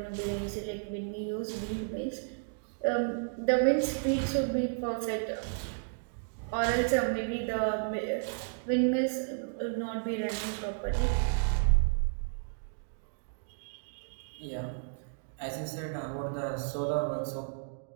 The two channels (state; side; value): silent; left; digital silence